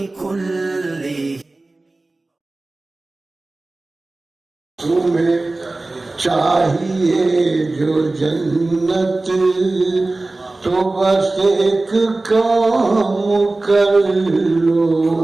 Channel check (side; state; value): left; quieter; 3.1 dB